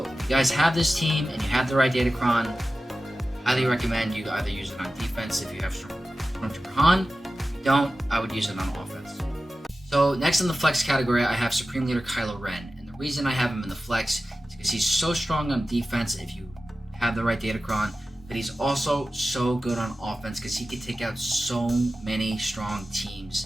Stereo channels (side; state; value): both; normal; correlation 0.94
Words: if you guys have this team and you have the right Datacron, highly recommend you either use it on defense if you have Stormtrooper Han. If you don't, I would use it on offense. So next in the flex category, I have Supreme Leader Kylo Ren. And the reason I have him in the flex is because he's so strong on defense if you have the right Datacron, but he's also so good on offense because he can take out so many strong